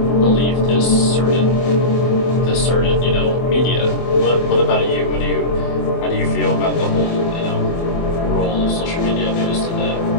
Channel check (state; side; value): late; right; 24 ms